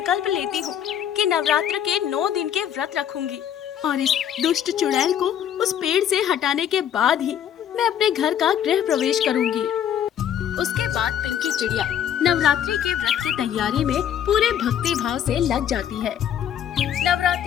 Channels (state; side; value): quieter; right; 9.6 dB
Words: लेती हूँ कि नवरात्र के 9 दिन के व्रत रखूंगी और इस दुष्ट चुड़ैल को उस पेड़ से हटाने के बाद ही मैं अपने घर का गृह प्रवेश करूंगी। उसके बाद पिंकी चिड़िया नवरात्रि के व्रत की तैयारी में पूरे भक्ति भाव से लग जाती है।